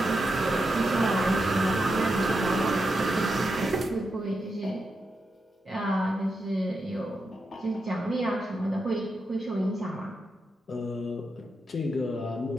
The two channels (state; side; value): normal; both; correlation 0.86